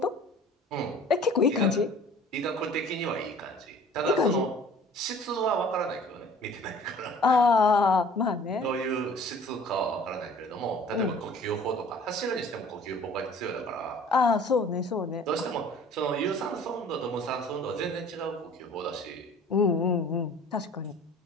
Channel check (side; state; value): both; normal; correlation 0.49